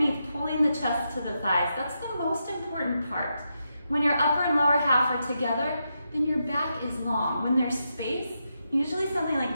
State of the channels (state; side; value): inverted; both; correlation -0.85